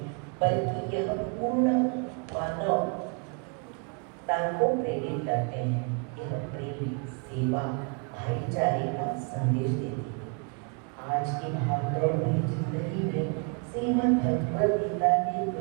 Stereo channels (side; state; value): left; quieter; 36.5 dB